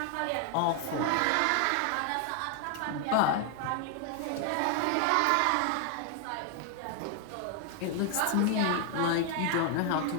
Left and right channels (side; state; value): both; different; correlation 0.00